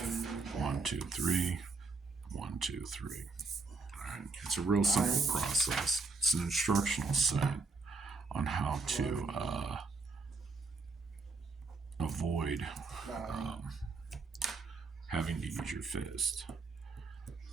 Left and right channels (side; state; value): left; quieter; 4.0 dB